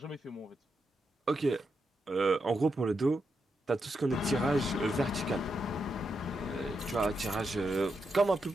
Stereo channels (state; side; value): normal; both; correlation 0.84